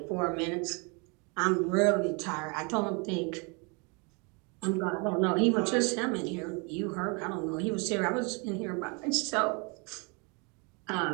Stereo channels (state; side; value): quieter; left; 32.0 dB